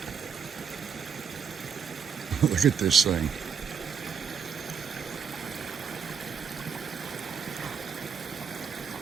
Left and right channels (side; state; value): left; quieter; 6.8 dB